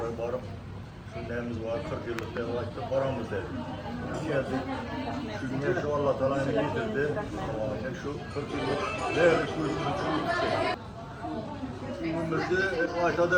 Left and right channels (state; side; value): identical; both; correlation 1.00